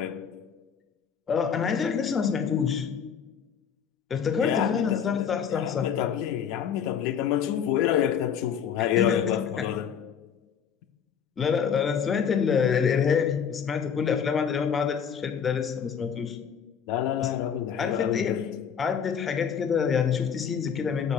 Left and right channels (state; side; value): quieter; right; 7.5 dB